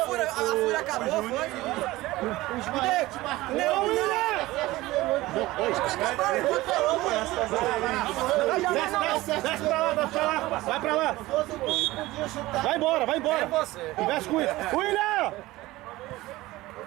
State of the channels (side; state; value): left; quieter; 18.5 dB